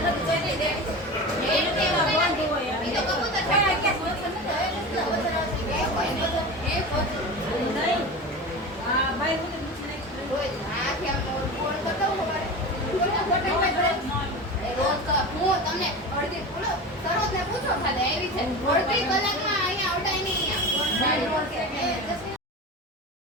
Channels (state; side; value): normal; both; correlation 0.28